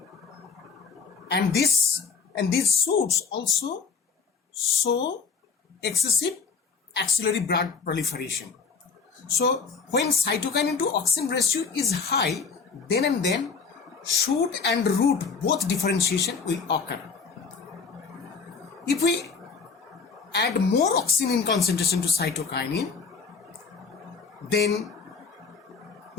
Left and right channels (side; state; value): right; quieter; 5.2 dB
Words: and these shoots also show excessive axillary bud proliferation. So when cytokinin to auxin ratio is high, then and then shoot and root both differentiation will occur. If we add more auxin in concentration to cytokinin, then